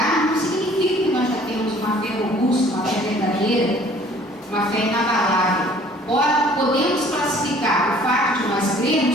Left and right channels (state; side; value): normal; both; correlation 0.54